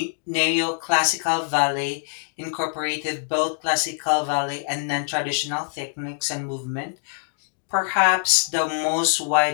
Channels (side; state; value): right; silent; digital silence